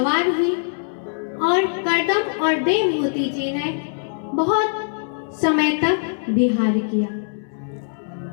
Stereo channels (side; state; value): right; silent; digital silence